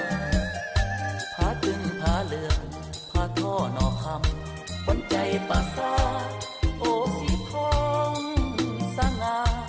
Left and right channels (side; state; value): both; identical; correlation 1.00